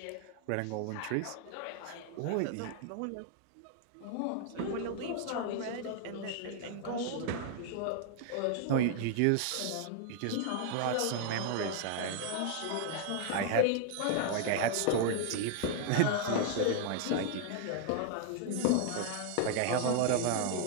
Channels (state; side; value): different; both; correlation 0.00